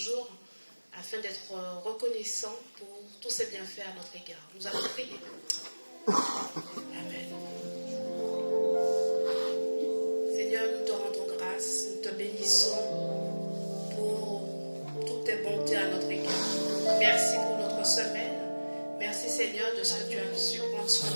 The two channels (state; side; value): inverted; both; correlation -1.00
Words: afin d'être reconnaissants pour tous ses bienfaits à notre égard. Nous allons prier. Amen. Seigneur, nous te rendons grâce, nous te bénissons pour toutes tes bontés à notre égard. Merci pour notre semaine. Merci Seigneur de ce que tu as su prendre soin